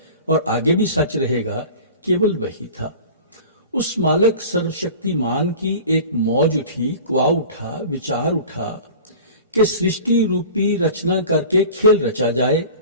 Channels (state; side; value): inverted; both; correlation -0.39